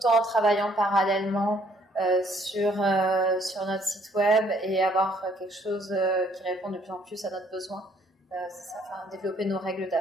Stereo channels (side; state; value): both; normal; correlation 0.64